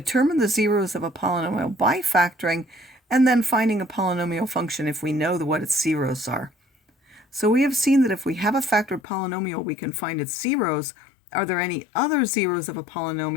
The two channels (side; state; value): right; drops out; at 9.0 s